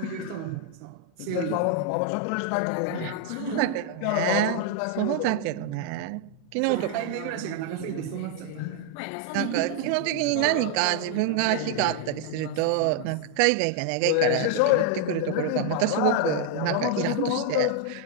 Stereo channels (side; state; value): both; different; correlation 0.00